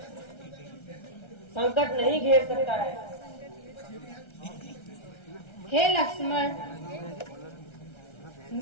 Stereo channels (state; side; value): late; right; 1.3 ms